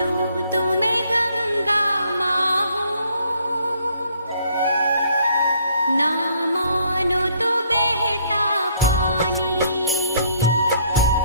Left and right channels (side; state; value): both; inverted; correlation -0.65